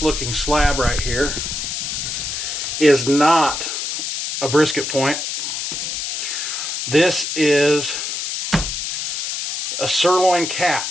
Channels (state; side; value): noise; left; hiss, 3 dB below the sound